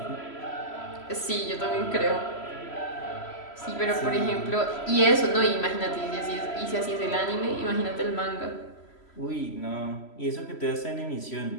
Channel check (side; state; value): right; late; 3.0 ms